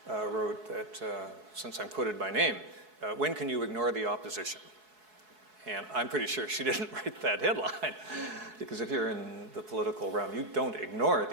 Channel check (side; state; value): left; late; 4.7 ms